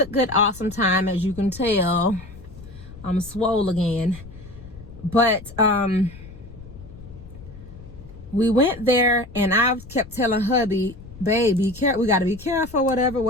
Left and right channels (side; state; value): left; noise; rumble, 17 dB below the sound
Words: awesome time. As you can tell, I'm swole again. But we went there, and I kept telling hubby, babe, be careful, we got to be careful,